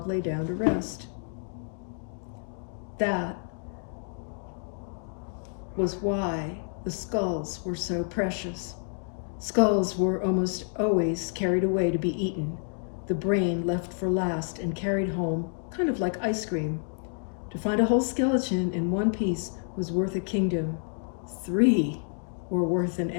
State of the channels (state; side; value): silent; right; 59 dB below the other